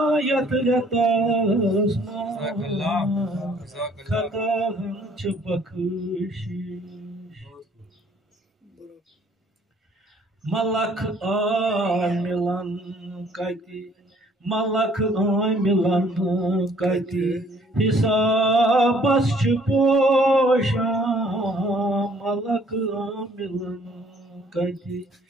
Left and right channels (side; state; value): both; normal; correlation 0.60